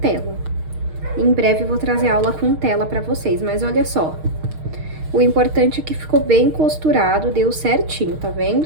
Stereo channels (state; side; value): late; left; 6.5 ms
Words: Em breve eu vou trazer aula com tela pra vocês, mas olha só. O importante é que ficou bem costurado, deu certinho, tá